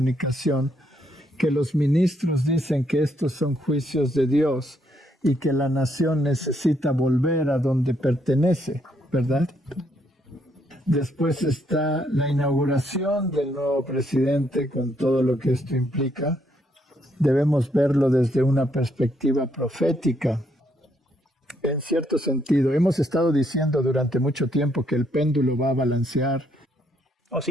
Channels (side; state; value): both; normal; correlation 0.73